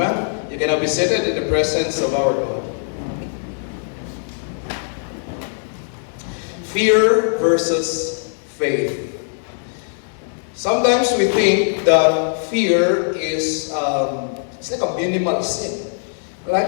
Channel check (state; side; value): silent; right; digital silence